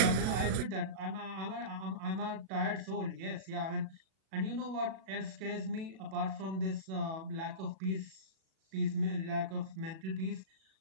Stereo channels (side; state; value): left; late; 37 ms